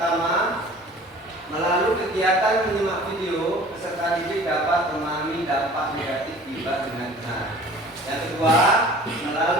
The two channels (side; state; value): both; normal; correlation 0.46